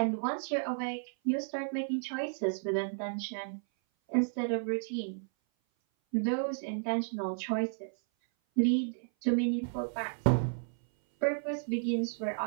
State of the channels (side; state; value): left; silent; 56 dB below the other